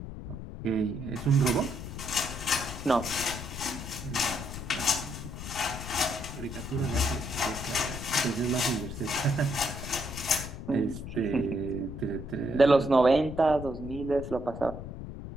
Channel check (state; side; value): noise; left; rumble, 9 dB below the sound